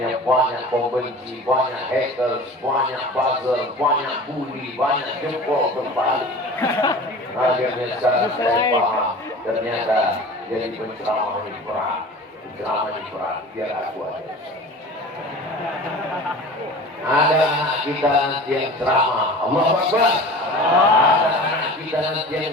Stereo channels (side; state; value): both; normal; correlation 0.38